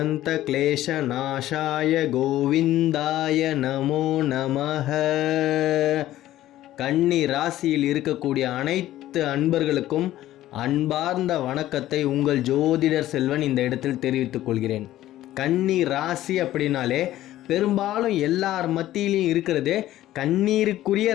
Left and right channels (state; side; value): quieter; right; 14.2 dB